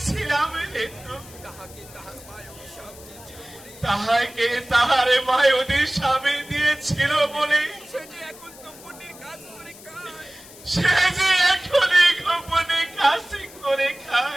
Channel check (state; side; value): noise; left; hiss, 19 dB below the sound